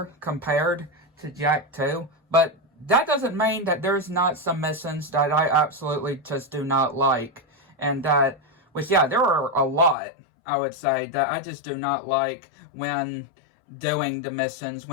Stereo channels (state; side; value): drops out; right; at 10.0 s